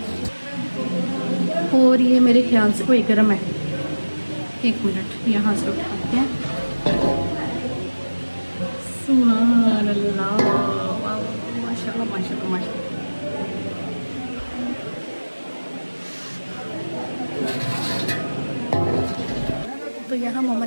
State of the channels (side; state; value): both; inverted; correlation -1.00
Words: और ये मेरे ख्याल से कोई गर्म है, एक मिनट यहाँ से उठाते हैं। सुभान अल्लाह, वाह माशाल्लाह माशाल्लाह माशाल्लाह। तो यहाँ मम्मा